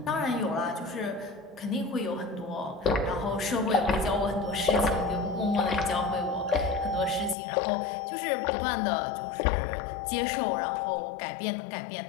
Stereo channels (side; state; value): right; drops out; at 7.4 s